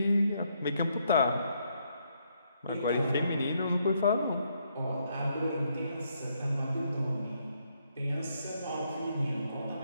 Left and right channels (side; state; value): both; inverted; correlation -0.74